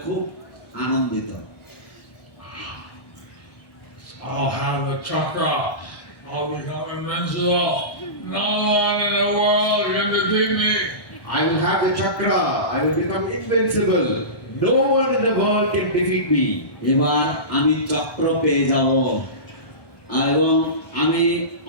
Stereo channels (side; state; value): right; late; 1.2 ms